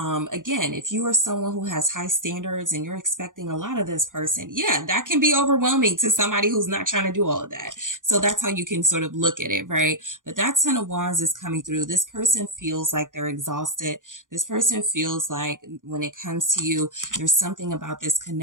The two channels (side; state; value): left; late; 0.88 ms